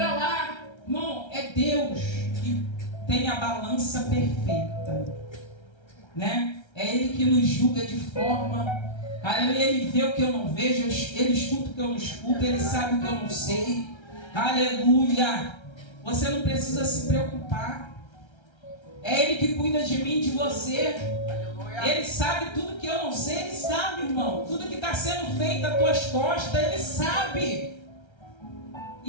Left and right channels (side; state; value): right; late; 1.3 ms